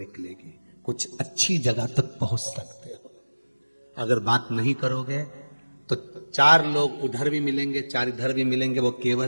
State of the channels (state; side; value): inverted; both; correlation -1.00